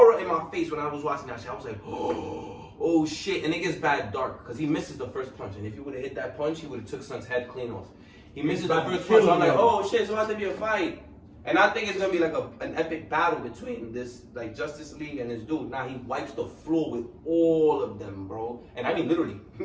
in my face when I was watching that shit, I was like, oh shit. And it gets bad dark because he misses the first punch. And if he would have hit that punch, he would have took Son's head clean off. He misses the first punch. So I'm like, oh shit, so it has to be a fight. And I think it's gonna be like an epic battle between this like Justice League and this dude. Now he wipes the floor with all of them, bro. And I mean literally.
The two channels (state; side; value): identical; both; correlation 1.00